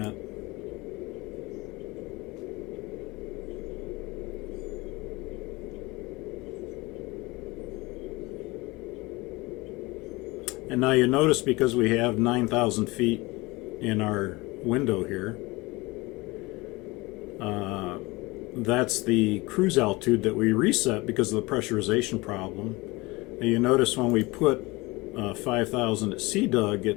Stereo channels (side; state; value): right; quieter; 22.8 dB